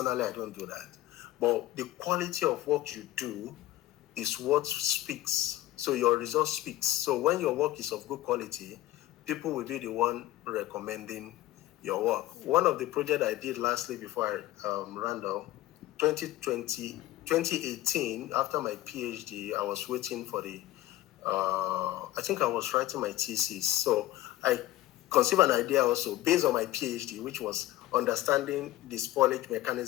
do that. But the quality of what you do is what speaks. So your result speaks. So when your work is of good quality, people will be the one recommending your work. One of the projects I did lastly before I ran down, 2018, after my PhD, I was waiting for the, I think I was writing my thesis. So I conceived an idea also based on my PhD, which was understanding the spoilage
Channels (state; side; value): quieter; right; 15.7 dB